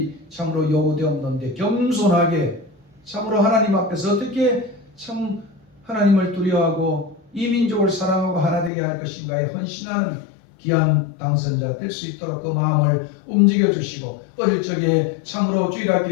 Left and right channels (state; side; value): drops out; right; at 8.7 s